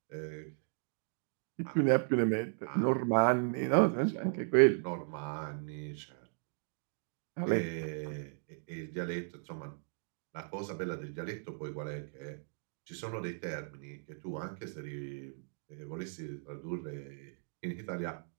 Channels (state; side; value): silent; left; digital silence